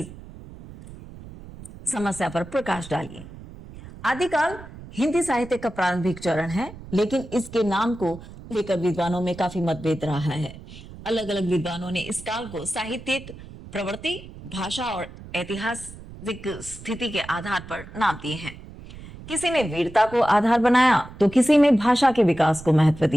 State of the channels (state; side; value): noise; right; rumble, 16 dB below the sound